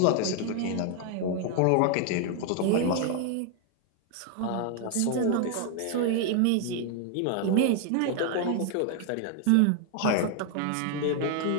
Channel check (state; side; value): different; both; correlation 0.00